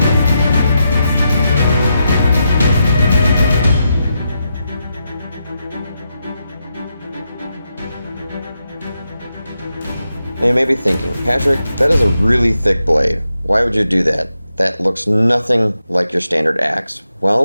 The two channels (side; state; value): both; inverted; correlation -0.85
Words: Now you may be thinking, Patrick, that is a really thick blade. Why would you do that? That looks nothing like your standard axe.